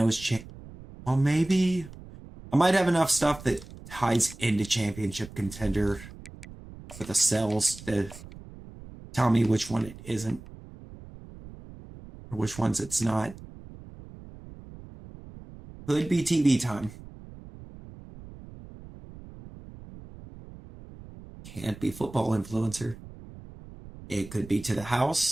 is well, maybe I might have enough stuff that ties into championship contender for the cells to tell me which one it isn't. Or which ones it's not. Could be TV time. Can't be football influencer. It could be to the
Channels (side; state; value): right; noise; rumble, 17 dB below the sound